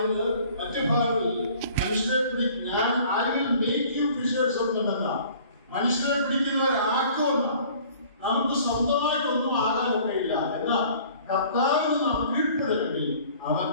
മറ്റു ഭാഗങ്ങളിൽ മനുഷ്യരെ ഞാൻ I will make you fishers of men എന്നാണ്. മനുഷ്യരെ പിടിക്കുന്നവരാക്കുമെന്നാണ്. നമുക്ക് സ്വന്തമായിട്ടൊന്നും ആകാനൊക്കെയില്ല. എന്നാൽ കർത്താവിന് നാം കീഴ്പ്പെടണമെങ്കിൽ അവൻ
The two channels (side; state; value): both; inverted; correlation -0.51